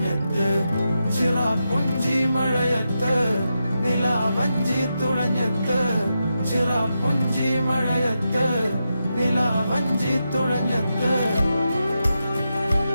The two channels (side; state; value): both; inverted; correlation -0.87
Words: ചിറാപ്പുഞ്ചി മഴയത്ത് നിലാവഞ്ചി തുഴഞ്ഞത്ത് ചിറാപ്പുഞ്ചി മഴയത്ത് നിലാവഞ്ചി തുഴഞ്ഞത്ത്